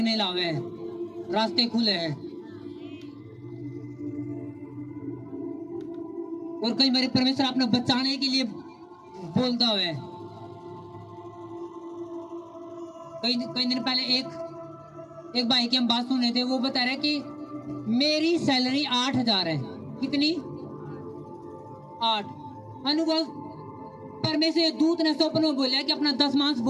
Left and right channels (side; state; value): both; identical; correlation 1.00